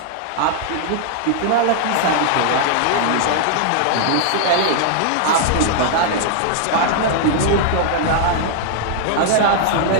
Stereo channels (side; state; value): both; different; correlation -0.01